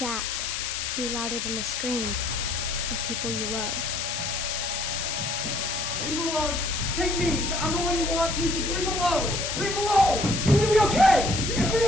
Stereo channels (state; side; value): noise; left; hiss, 2 dB below the sound